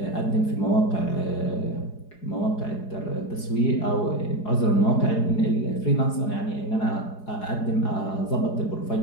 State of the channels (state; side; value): late; right; 4.8 ms